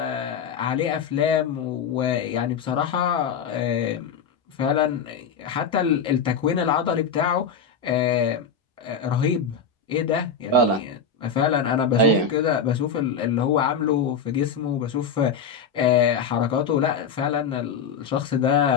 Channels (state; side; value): quieter; right; 6.0 dB